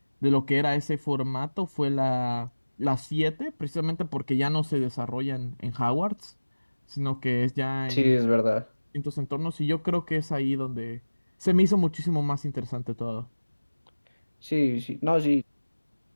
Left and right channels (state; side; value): inverted; both; correlation -1.00